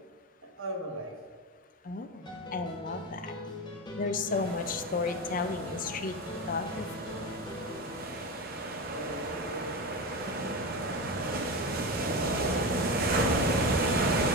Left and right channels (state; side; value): normal; both; correlation 0.20